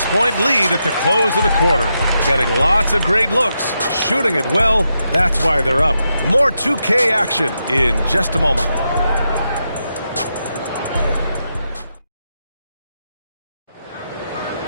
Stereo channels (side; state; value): both; inverted; correlation -0.85